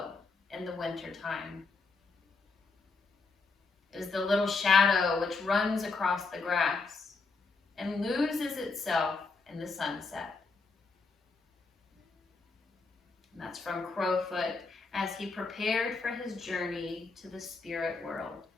in the wintertime. It is the little shadow which runs across the grass and loses itself in the sunset. And that's from Crowfoot as he prepared for his journey to the spirit world.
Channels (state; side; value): quieter; right; 4.1 dB